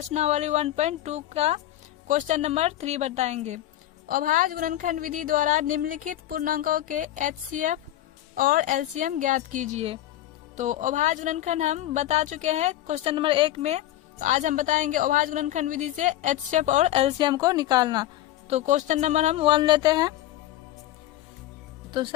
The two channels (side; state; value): right; quieter; 13.8 dB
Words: 1.2 का क्वेश्चन नंबर 3 बताएंगे। अभाज्य गुणनखंड विधि द्वारा निम्नलिखित पूर्णांकों के एचसीएफ और एलसीएम ज्ञात कीजिए। तो अभाज्य गुणनखंड हम बता चुके हैं क्वेश्चन नंबर 1 में। तो आज हम बताएंगे अभाज्य गुणनखंड विधि से एचसीएफ और एलसीएम को निकालना। तो क्वेश्चन नंबर हम 1 लेते हैं। तो